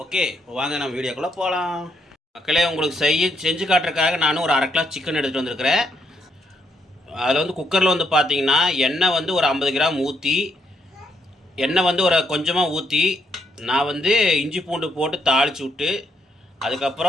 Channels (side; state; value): both; normal; correlation 0.75